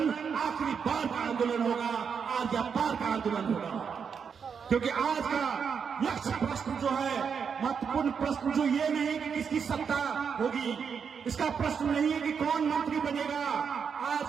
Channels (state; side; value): quieter; left; 6.5 dB